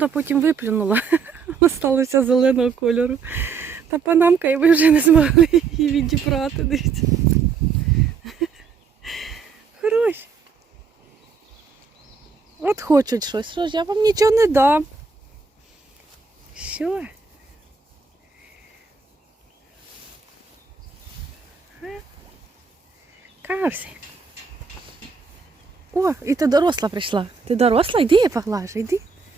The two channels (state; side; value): quieter; left; 5.5 dB